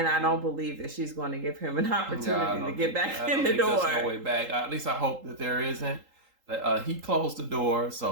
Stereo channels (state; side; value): late; left; 3.8 ms